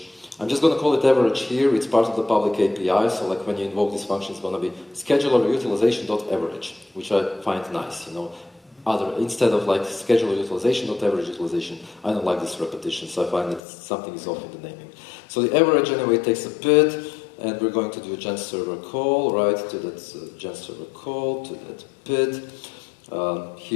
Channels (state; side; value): drops out; right; at 13.6 s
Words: I'm just going to call it average here. It's part of the public API, so like when you invoke this function, it's going to be scheduler utilization.average, which I find nice, you know. Instead of like scheduler utilization.average utilization, I don't like this repetition, so I find that something is off in the naming. So the average anyway takes a PID, and we're going to do a gen server call, right, to that gen server call, to that PID.